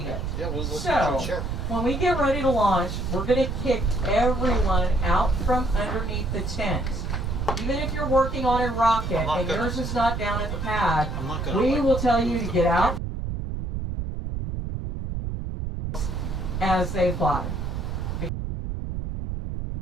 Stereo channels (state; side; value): noise; right; rumble, 4 dB below the sound